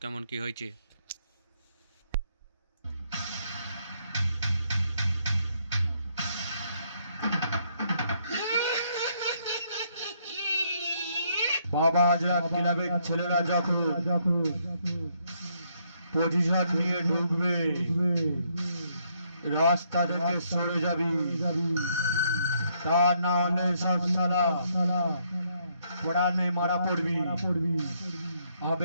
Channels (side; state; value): both; inverted; correlation -0.72